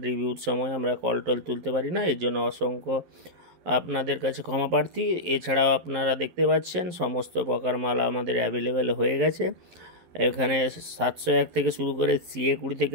রিভিউর সময় আমরা কল টল তুলতে পারি না, এর জন্য অসংখ্য আপনাদের কাছে ক্ষমা প্রার্থী। এছাড়াও আপনারা দেখতে পাচ্ছেন সমস্ত প্রকার মাল আমাদের অ্যাভেলেবেল হয়ে গেছে। এখানে 701 থেকে শুরু করে CA20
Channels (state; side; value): late; left; 11 ms